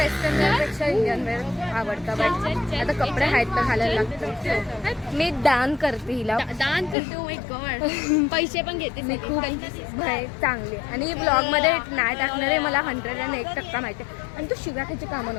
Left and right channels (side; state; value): right; drops out; at 7.0 s